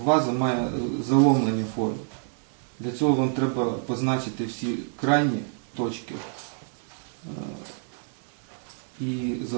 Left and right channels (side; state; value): left; silent; 60 dB below the other